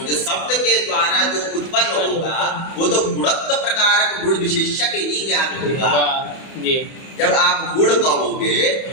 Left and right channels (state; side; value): late; right; 31 ms